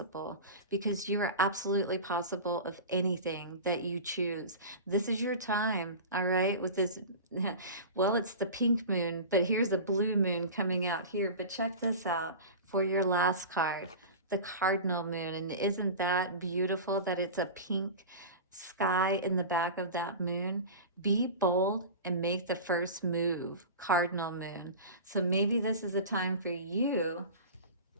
because you are absolutely possible of anything that you choose. This is your time, all right, with this, well, it's the pink moon, but here's a blue moon coming out here. But check this out for your last card, the Cardinal Moon. And isn't that beautiful that it's a pink sky in the back of that moon? Be bold and make the first move, Cardinal Moon. So maybe this is a time for you.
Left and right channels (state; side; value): inverted; both; correlation -0.31